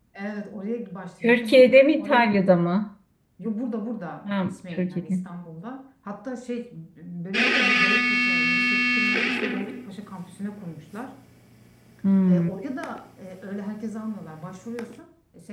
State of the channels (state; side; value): identical; both; correlation 1.00